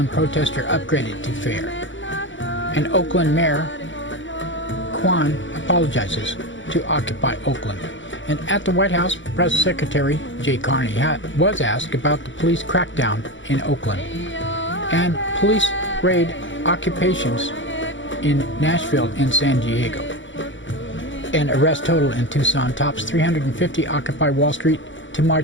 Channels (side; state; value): right; late; 0.55 ms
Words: protester upgraded to fair. And Oakland Mayor Kwan apologizes to Occupy Oakland. And at the White House, Press Secretary Jay Carney was asked about the police crackdown in Oakland. And police raid occupations in Nashville and San Diego. And arrest total in Tucson tops 350 Occupy Wall Street to